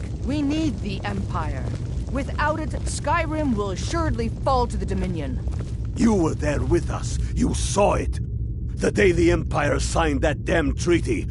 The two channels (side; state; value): both; identical; correlation 1.00